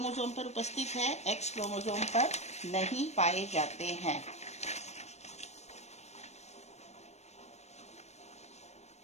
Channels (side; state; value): right; late; 0.32 ms